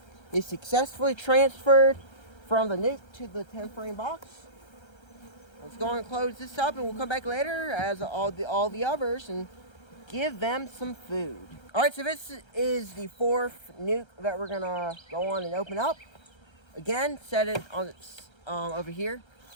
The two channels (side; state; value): right; late; 1.3 ms